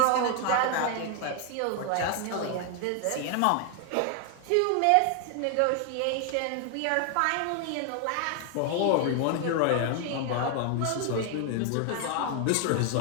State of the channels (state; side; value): different; both; correlation 0.00